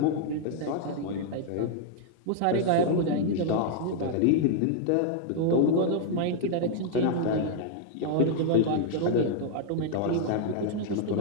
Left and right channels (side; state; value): both; different; correlation -0.01